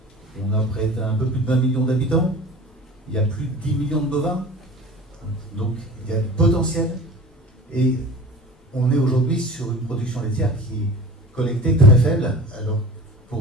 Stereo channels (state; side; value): normal; both; correlation 0.39